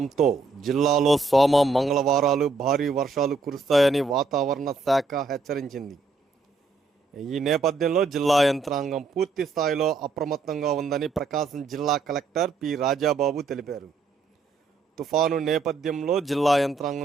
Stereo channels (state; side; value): quieter; left; 4.0 dB